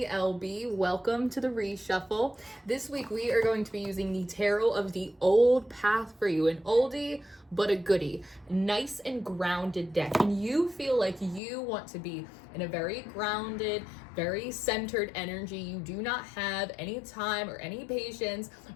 LB. Welcome to the Reshuffle. This week we are going to be using the Tarot of the Old Path for you, an oldie but a goodie. Nice and grounded deck. And you feel like you want to be in a very grounded, very centered energy. You do not have any time or any patience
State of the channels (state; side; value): drops out; right; at 11.4 s